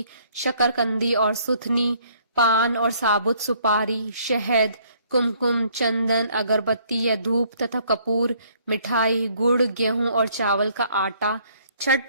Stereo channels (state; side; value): inverted; both; correlation -0.63